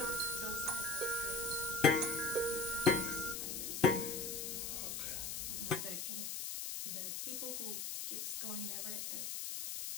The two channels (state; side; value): noise; left; hiss, 3 dB below the sound